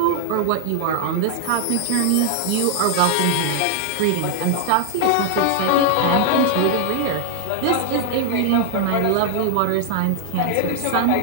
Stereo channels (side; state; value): both; different; correlation 0.00